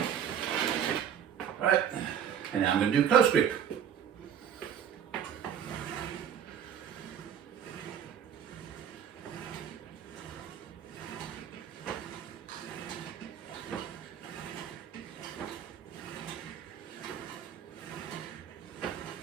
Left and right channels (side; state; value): left; quieter; 8.8 dB